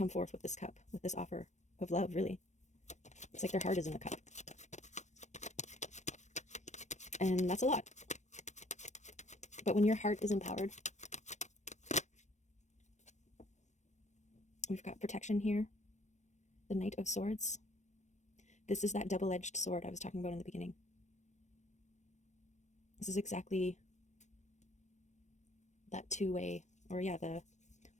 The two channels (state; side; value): late; right; 0.34 ms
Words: forth with this cup, with this offer of love, really. It's like their heart is in the cup. And that's a lot. But when your heart is empowered, we've got protection here. The Knight of Swords. This is that double-edged sword I was talking about in the beginning. This is exactly that two-way, or yeah, what